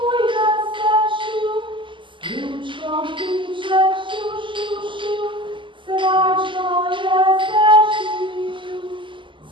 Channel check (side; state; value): left; late; 0.24 ms